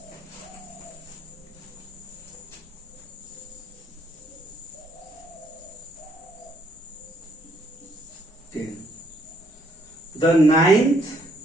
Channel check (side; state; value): both; normal; correlation 0.69